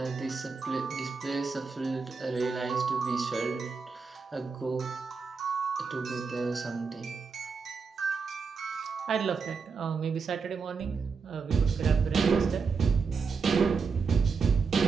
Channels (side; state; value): left; quieter; 5.2 dB